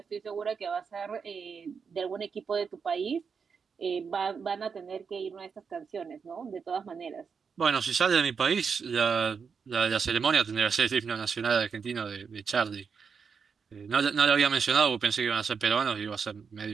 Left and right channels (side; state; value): left; quieter; 5.9 dB